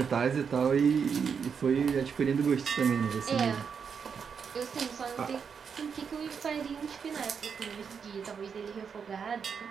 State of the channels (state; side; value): quieter; left; 6.5 dB